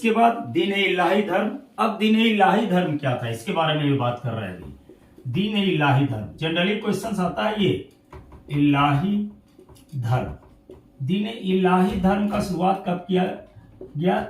बाद दीन इलाही धर्म। अब दीन इलाही धर्म क्या था, इसके बारे में ये बात कर रहे हैं। दीन इलाही धर्म जनरली क्वेश्चन आता है, ये इलाही धर्म, दीन इलाही धर्म का शुरुआत कब किया गया?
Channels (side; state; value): both; identical; correlation 1.00